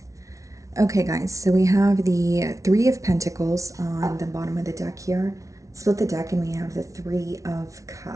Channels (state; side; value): late; left; 0.16 ms